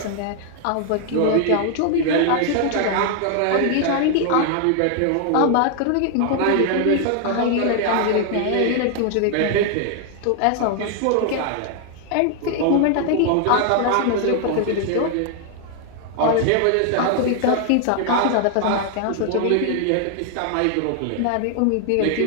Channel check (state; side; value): different; both; correlation 0.00